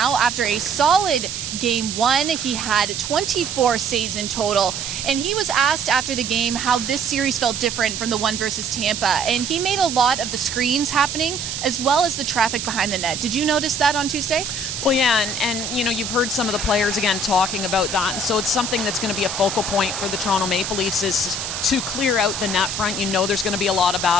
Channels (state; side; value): noise; right; hiss, 5 dB below the sound